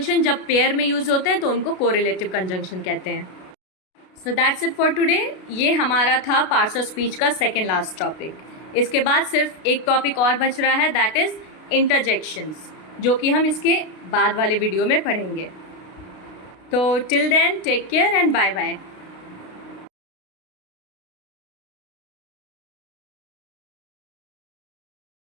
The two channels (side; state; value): right; late; 32 ms